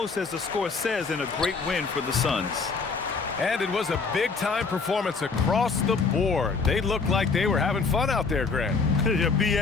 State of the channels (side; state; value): right; quieter; 4.7 dB